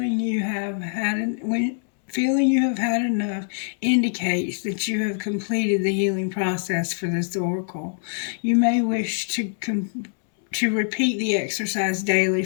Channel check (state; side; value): silent; right; 63 dB below the other